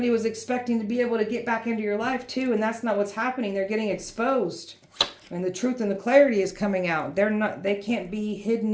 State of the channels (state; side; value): identical; both; correlation 1.00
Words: was expecting to be able to get back into your life too, and that's not what's happening. They're getting exposed. And the truth and the clarity is coming out. They can't be hidden